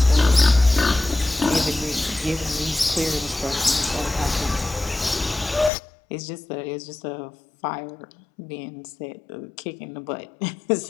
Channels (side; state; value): right; drops out; at 5.7 s